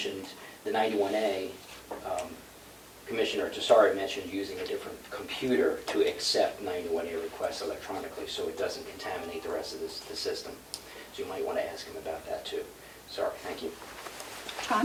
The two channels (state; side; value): identical; both; correlation 1.00